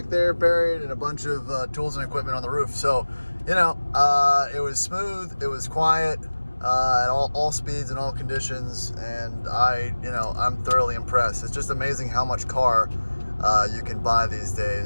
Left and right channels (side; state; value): both; inverted; correlation -1.00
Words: there buried, and a bunch of tools and equipment on the roof. So, you know, it was smooth, it was quiet, at all speeds and all conditions, and I'm thoroughly impressed. It's just amazing how much car you can buy these